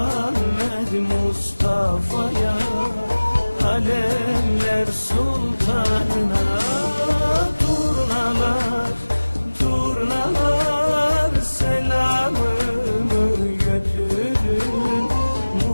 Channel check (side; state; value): both; inverted; correlation -1.00